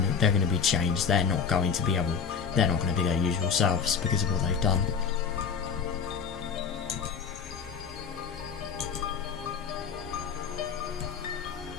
to be changed. They're not going to be their usual selves because of what they've done.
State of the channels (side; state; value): right; quieter; 6.3 dB